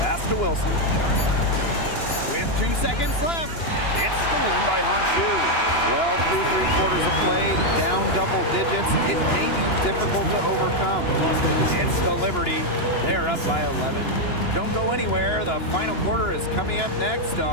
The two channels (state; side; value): late; right; 2.9 ms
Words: to Wilson. With 2 seconds left. It's stolen by Honshu. Well, through 3 quarters of play, down double digits. It may be difficult to overcome. It's the Liberty. They're up by 11. Don't go anywhere. The final quarter is coming up next